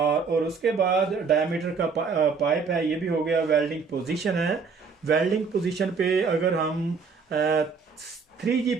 उसके बाद डायमीटर का पाइप है, ये भी हो गया। वेल्डिंग पोजीशन है, वेल्डिंग पोजीशन पे अगर हम 3G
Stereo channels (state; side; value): quieter; left; 5.2 dB